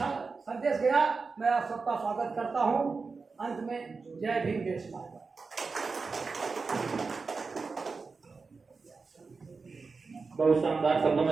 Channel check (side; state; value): left; quieter; 4.5 dB